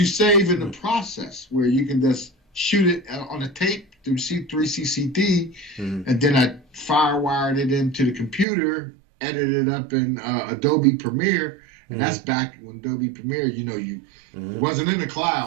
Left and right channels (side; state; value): left; drops out; at 8.5 s